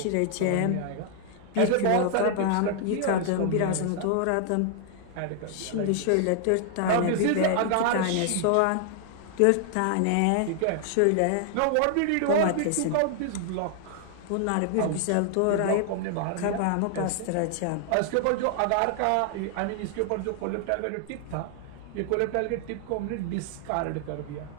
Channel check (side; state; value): both; different; correlation 0.00